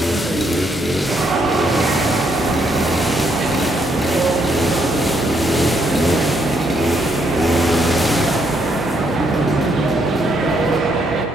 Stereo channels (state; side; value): normal; both; correlation 0.74